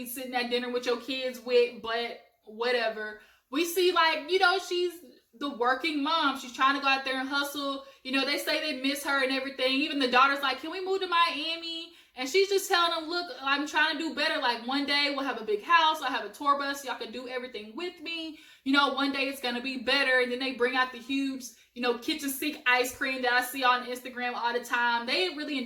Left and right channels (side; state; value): both; identical; correlation 1.00